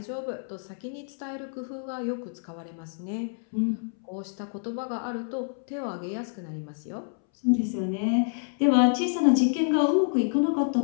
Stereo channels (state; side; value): silent; right; 59 dB below the other